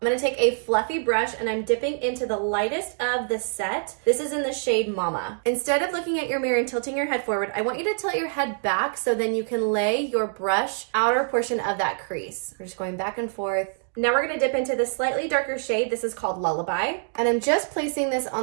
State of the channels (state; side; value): silent; left; digital silence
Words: gonna take a fluffy brush and I'm dipping into the lightest of the set. This is in the shade Mama. Instead of looking at your mirror and tilting your head forward, I want you to tilt your head back so then you can lay your brush outer portion of that crease. We're just going back and forth. Now we're gonna dip into the slightly darker shade. This is called Lullaby. And I'm just placing this